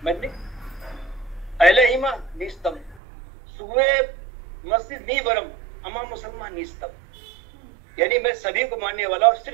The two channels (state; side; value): drops out; left; at 3.0 s